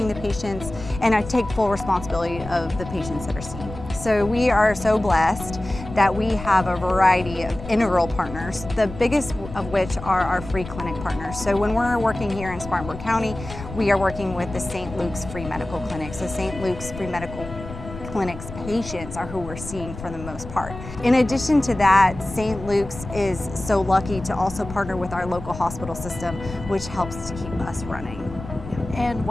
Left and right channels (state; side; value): noise; left; rumble, 12 dB below the sound